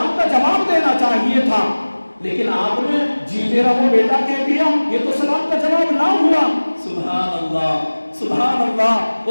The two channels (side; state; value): both; inverted; correlation -1.00